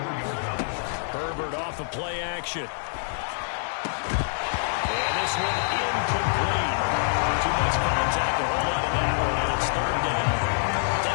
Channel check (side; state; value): right; silent; digital silence